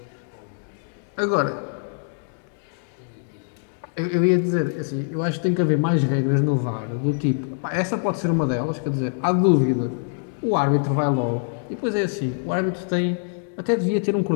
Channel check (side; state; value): right; silent; 63 dB below the other